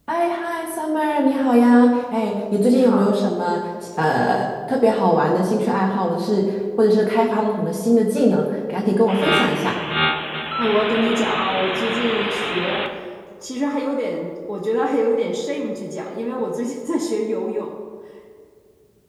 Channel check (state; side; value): identical; both; correlation 1.00